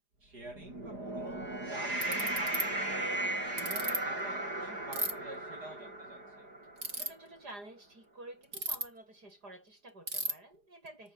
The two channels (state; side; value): late; left; 4.9 ms